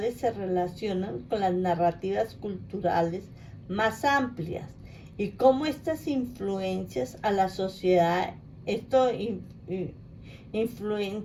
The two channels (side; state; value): both; identical; correlation 1.00